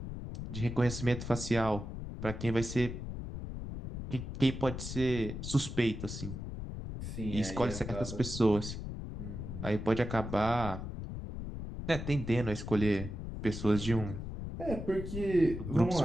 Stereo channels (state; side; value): noise; left; rumble, 7 dB below the sound